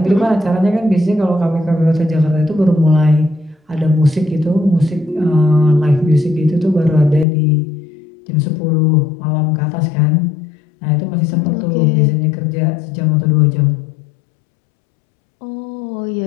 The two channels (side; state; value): right; drops out; at 7.2 s